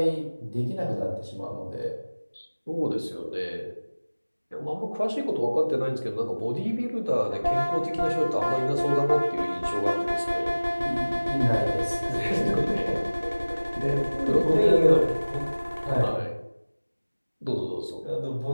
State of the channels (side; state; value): both; inverted; correlation -1.00